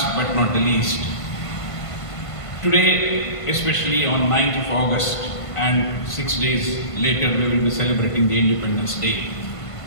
but not the least, today, especially on 9th of August, and 6 days later we will be celebrating the Independence Day.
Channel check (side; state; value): right; late; 1.5 ms